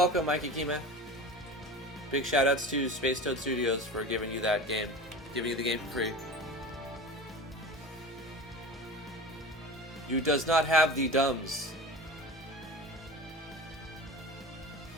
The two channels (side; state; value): both; normal; correlation 0.33